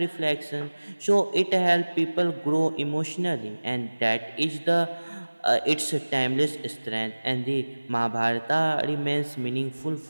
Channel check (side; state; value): both; inverted; correlation -1.00